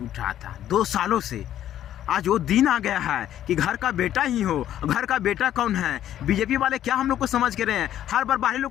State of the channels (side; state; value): right; quieter; 11.6 dB